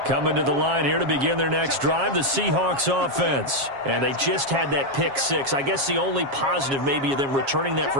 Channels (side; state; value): left; late; 7.4 ms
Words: Coming to the line here to begin their next drive, the Seahawks offense. And they just had that pick six. I guess the only positive maybe of them returning that for